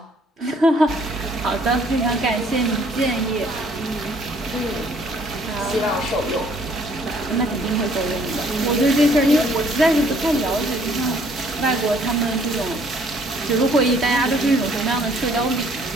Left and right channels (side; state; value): both; normal; correlation 0.61